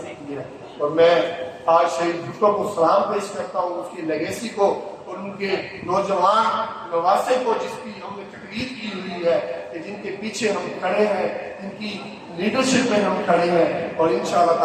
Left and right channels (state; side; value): identical; both; correlation 1.00